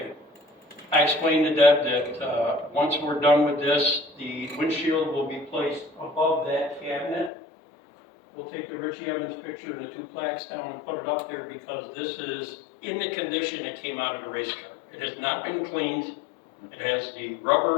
I explained to Deb that once we're done with this, the windshield will be placed above that cabinet. We'll take the Richie Evans picture and the 2 plaques down and put it up there because this is in the condition it came out of the race car. It has not been cleaned. It has the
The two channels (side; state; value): right; drops out; at 7.3 s